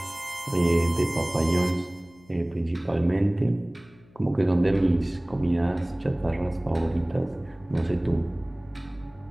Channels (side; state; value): left; noise; hum, 27 dB below the sound